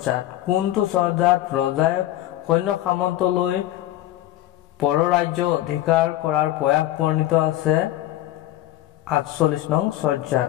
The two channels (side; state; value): right; quieter; 14.5 dB